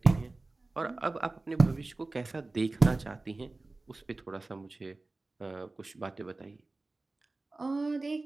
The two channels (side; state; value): left; quieter; 3.2 dB